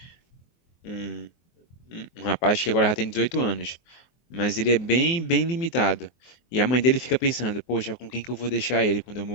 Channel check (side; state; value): right; late; 23 ms